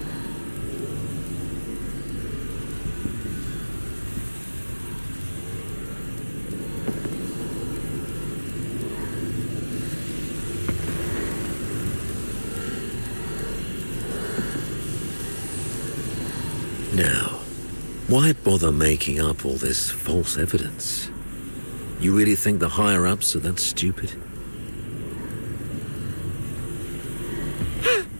Now, why bother making up all this false evidence? You really think the higher-ups are that stupid?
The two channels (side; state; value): both; inverted; correlation -1.00